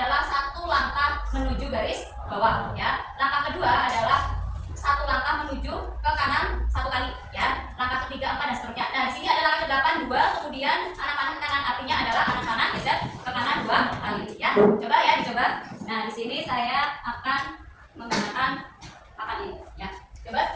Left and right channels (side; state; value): both; identical; correlation 1.00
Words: 1 langkah menuju garis bawah. Ya, langkah kedua adalah 1 langkah menuju ke kanan 1 kali. Ya, langkah ketiga 4 dan seterusnya. Nah, di sini ada langkah ke-8 2, kemudian anak panah ke kanan artinya adalah anak panah geser ke kanan 2 kali. Ya, coba ya dicoba. Nah, di sini saya akan menggunakan papan ini ya. Coba